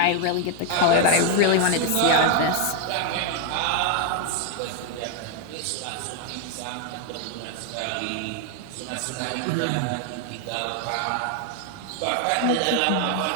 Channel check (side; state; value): both; different; correlation 0.00